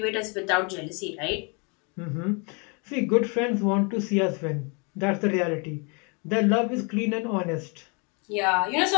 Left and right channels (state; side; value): quieter; right; 33.5 dB